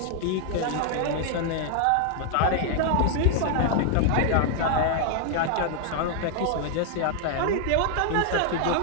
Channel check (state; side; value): different; both; correlation 0.00